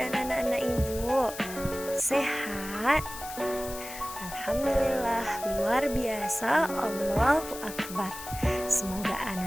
anak-anak ibu? Sehat? Alhamdulillah, luar biasa, Allahu Akbar. Semoga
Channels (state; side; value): noise; left; hiss, 11 dB below the sound